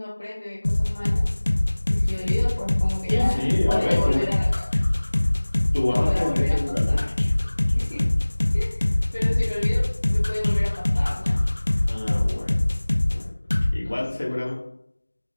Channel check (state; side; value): inverted; both; correlation -1.00